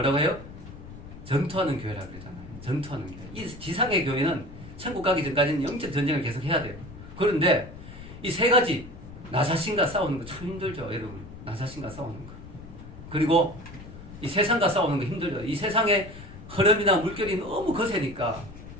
해요? 전투하는 교회라고 그러잖아요. 전투하는 교회. 이 지상의 교회는 천국 가기 전까지는 영적 전쟁을 계속 해야 돼요. 그런데 이 세 가지, 나 자신과 싸우는 거 참 힘들죠, 여러분. 나 자신과 싸우는 거. 그리고 이 세상과 싸우는 거 힘들죠. 이 세상의 흐름이나 물결이 너무 거세니까,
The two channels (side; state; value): left; noise; rumble, 15 dB below the sound